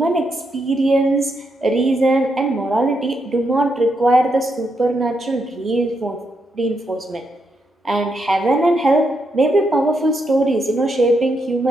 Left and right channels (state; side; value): normal; both; correlation 0.81